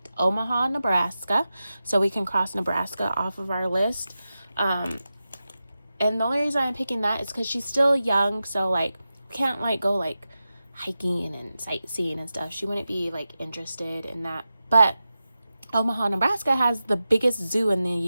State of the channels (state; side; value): inverted; both; correlation -0.92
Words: Omaha, Nebraska. So we can cross Nebraska off of our list. And the only reason I'm picking that is because she's still young. So like, can't like go like hiking and sightseeing and stuff. She wouldn't be like interested in that. But Omaha, Nebraska has the biggest zoo in the